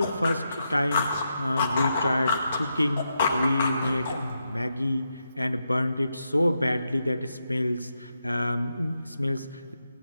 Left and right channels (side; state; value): both; inverted; correlation -0.84